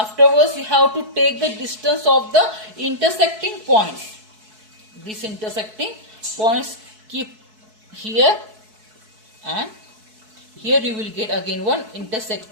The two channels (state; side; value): late; left; 4.6 ms